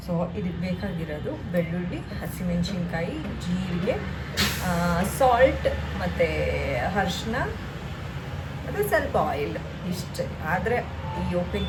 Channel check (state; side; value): identical; both; correlation 1.00